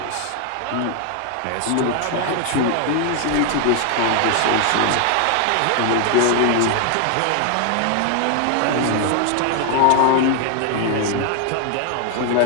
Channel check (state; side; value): different; both; correlation 0.00